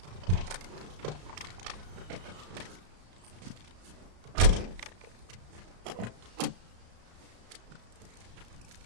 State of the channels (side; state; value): left; late; 34 ms